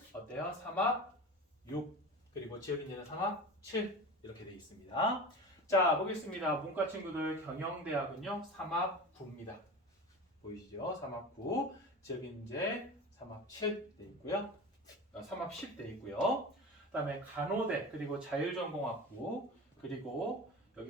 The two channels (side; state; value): both; normal; correlation 0.31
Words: 어때요? 3합 6 그리고 지역인재는 3합 7 이렇게 되어 있습니다. 자, 보겠습니다. 문과 친구들 경영대학은요 3합 9입니다. 보이시죠? 3합 9 지역인재 3합 7 돼 있고요. 3합 10 돼 있고요. 그 다음에 간호대 그리고 자율전공학부 그리고